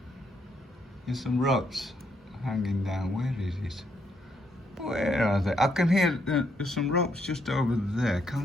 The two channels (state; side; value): normal; both; correlation 0.75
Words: There's some ropes hanging down. Where is it? Where are they? I can hear there's some ropes just over there.